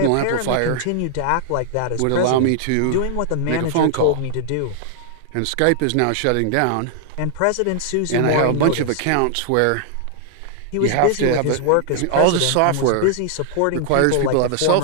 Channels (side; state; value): both; different; correlation -0.01